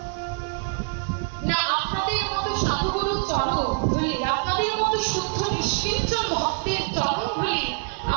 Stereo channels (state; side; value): quieter; left; 37.2 dB